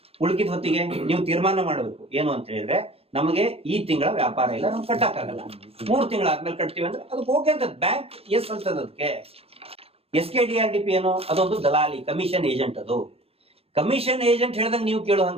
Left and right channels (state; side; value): late; left; 0.28 ms